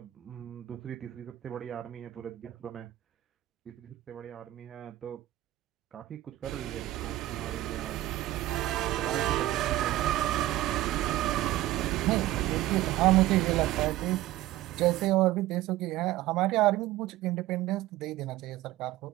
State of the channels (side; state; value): left; quieter; 15.5 dB